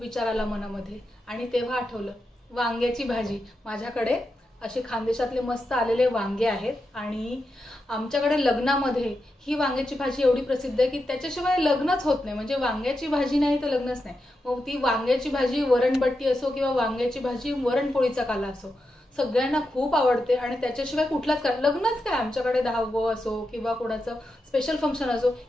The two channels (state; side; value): normal; both; correlation 0.87